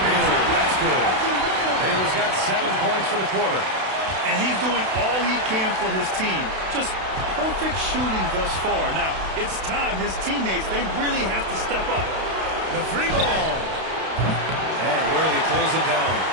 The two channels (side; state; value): left; late; 32 ms